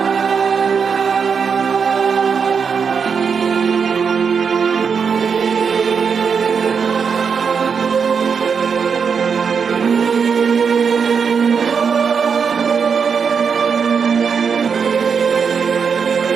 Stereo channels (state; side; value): quieter; left; 6.2 dB